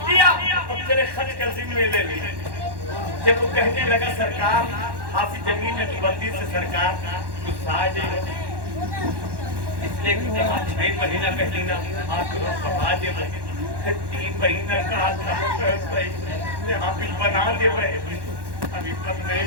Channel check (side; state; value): left; late; 1.1 ms